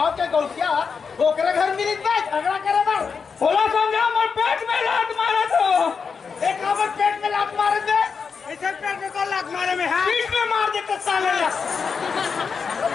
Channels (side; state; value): right; quieter; 5.7 dB